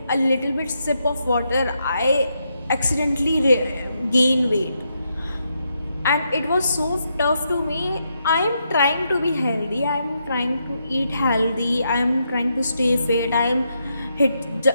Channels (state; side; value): inverted; both; correlation -0.81